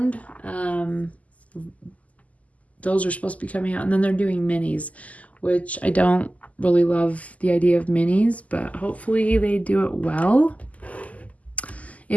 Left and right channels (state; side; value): late; right; 0.072 ms